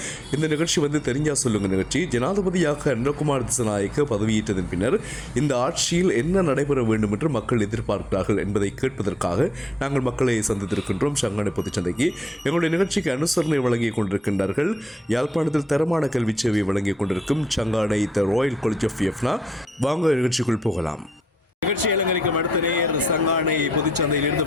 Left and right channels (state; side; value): normal; both; correlation 0.80